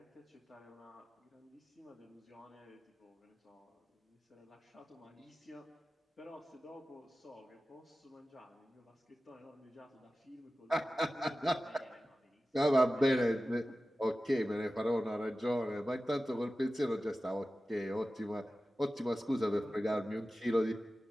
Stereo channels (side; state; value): both; normal; correlation 0.95